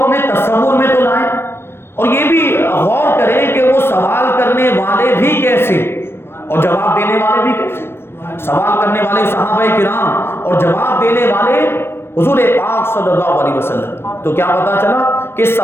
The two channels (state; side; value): late; right; 0.12 ms